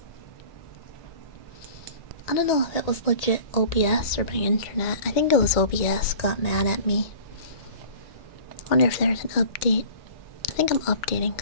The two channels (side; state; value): right; late; 2.1 ms